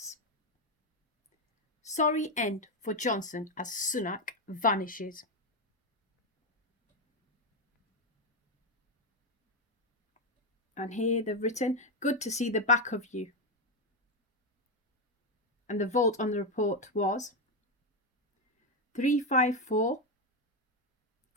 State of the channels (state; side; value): normal; both; correlation 0.08